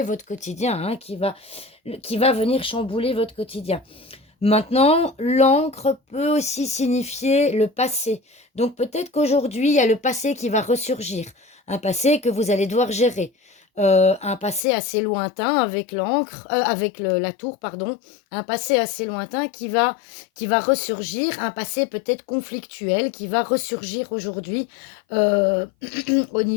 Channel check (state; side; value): drops out; right; at 14.6 s